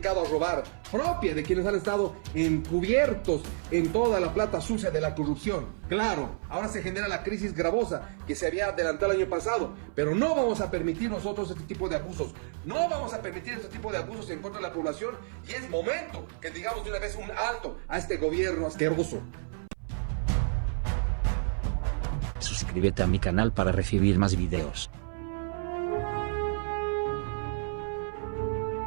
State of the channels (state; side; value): silent; left; 56 dB below the other